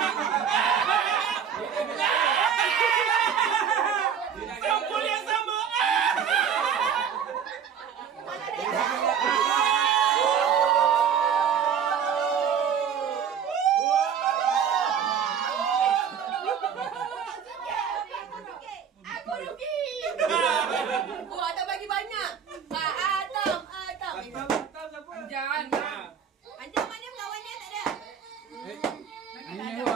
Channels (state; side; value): quieter; left; 7.8 dB